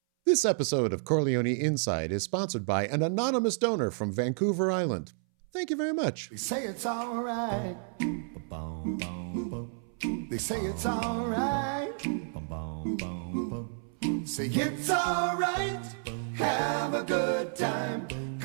This episode of Chor Leoni Inside is sponsored by an anonymous donor from Vancouver Island. Thank you very much. They say it's all right. They say it's all right. Say it's all right. Have a good time,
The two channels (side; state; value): left; silent; 57 dB below the other